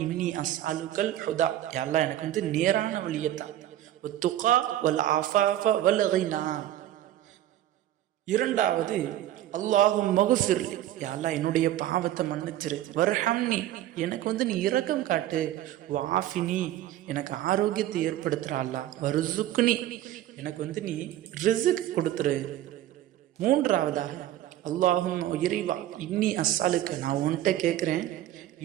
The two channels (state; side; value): quieter; left; 13.0 dB